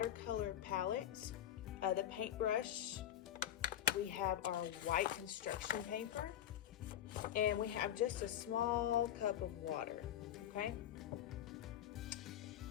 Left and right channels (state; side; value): quieter; right; 11.4 dB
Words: palettes, the paintbrush, we have our white construction paper, and we have just a small cup of water, okay?